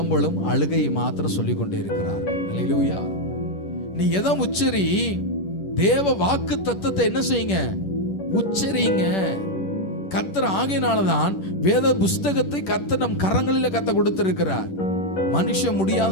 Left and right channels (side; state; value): right; late; 10 ms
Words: அழுகை மாத்திரம் சொல்லிக் கொண்டே இருக்கிறார். அல்லேலூயா. நீ எதை உச்சரி, தேவ வாக்கு தத்தத்தை என்ன செய்யுங்க, உச்சரிங்க. கர்த்தர் ஆகையினாலதான் வேத புஸ்தகத்தை கர்த்தர் நம் கரங்களில் கத்த கொடுத்திருக்கிறார். மனுஷன்